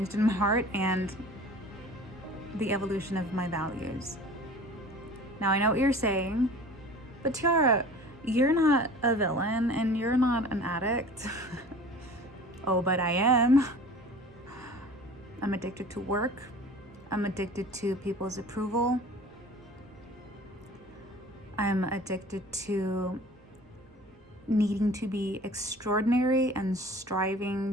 in my heart, and the evolution of my values. Now, I know what you're saying, but Tiara, you're not a villain and you're not an addict. Oh, but I am. I'm addicted to work. I'm addicted to people's approval. I'm addicted to needing to be extraordinary and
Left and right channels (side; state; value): both; normal; correlation 0.43